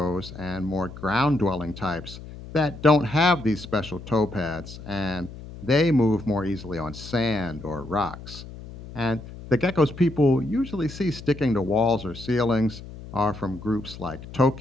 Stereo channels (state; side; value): noise; left; hum, 14 dB below the sound